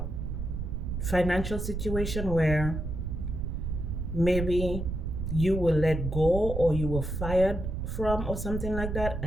financial situation where maybe you were let go, or you were fired from, or something like that,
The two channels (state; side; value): noise; right; rumble, 4 dB below the sound